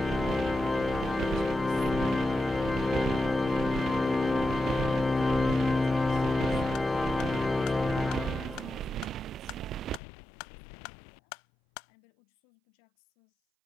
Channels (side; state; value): right; drops out; at 10.0 s